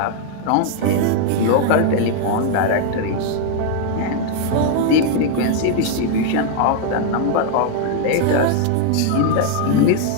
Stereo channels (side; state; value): both; different; correlation 0.00